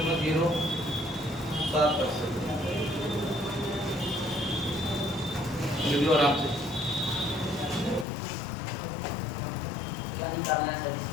वीडियो आराम से। क्या निकालना है सर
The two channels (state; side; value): drops out; right; at 8.1 s